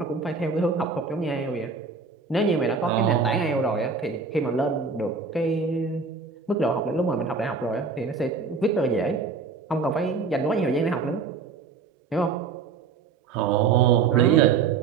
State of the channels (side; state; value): left; quieter; 5.0 dB